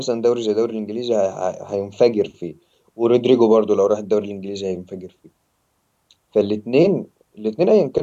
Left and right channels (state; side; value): identical; both; correlation 1.00